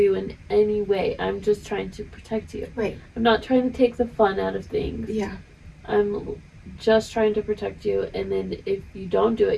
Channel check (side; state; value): both; identical; correlation 1.00